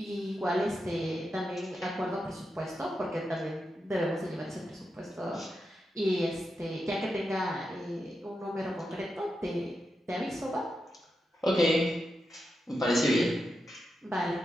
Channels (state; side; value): normal; both; correlation 0.87